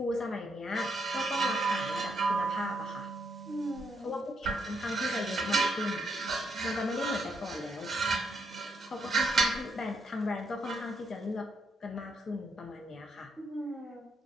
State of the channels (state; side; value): normal; both; correlation 0.76